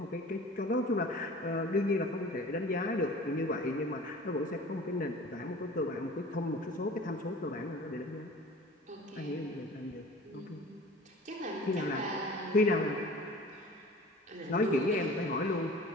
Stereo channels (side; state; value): both; normal; correlation 0.43